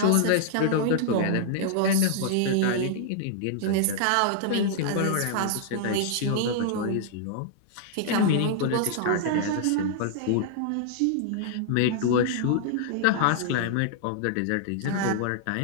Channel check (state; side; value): different; both; correlation -0.01